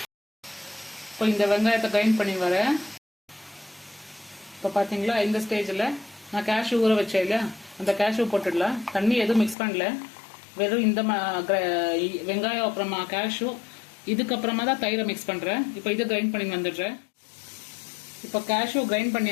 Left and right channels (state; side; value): drops out; right; at 9.6 s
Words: இப்போ இந்த வெங்காயத்தை கிரைண்ட் பண்ணி வரேன். இப்போ பார்த்தீங்களா, இந்த ஸ்டேஜில் நான் கேஷ்யூ ஊற வச்சேன் இல்லையா, அந்த கேஷ்யூ போட்டுடலாம். தண்ணி எதுவும் மிக்ஸ் பண்ணல, வெறும் இந்த வெங்காயம் அப்புறமா கேஷ்யூ, இதுக்கப்புறமா தான் தயிரை மிக்ஸ் பண்ணுறேன். இப்போ இதை கிரைண்ட் பண்ணி வந்துடுறேன். இப்போ கேஷ்யூ கிரைண்ட்